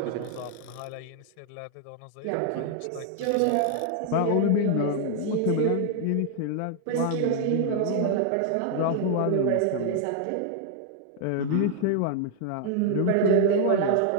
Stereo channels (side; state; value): both; different; correlation -0.01